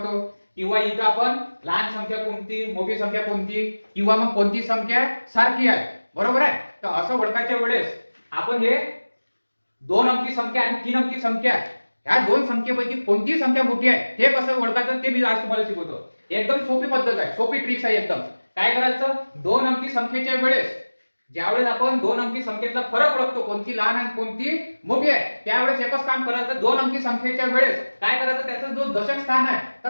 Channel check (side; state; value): both; inverted; correlation -1.00